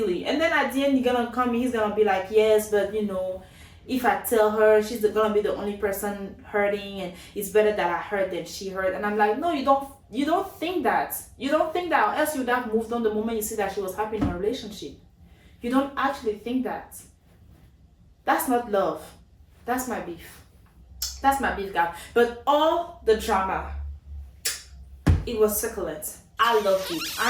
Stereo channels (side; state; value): both; identical; correlation 1.00